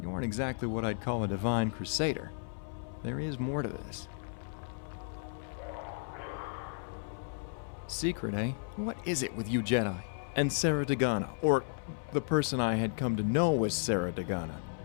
you aren't exactly what I'd call a divine crusader. There is more to this. Secret, eh? What is it with you Jedi? And Sarah Dagana, or the person I had come to know as Sarah Dagana.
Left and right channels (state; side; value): silent; right; 55 dB below the other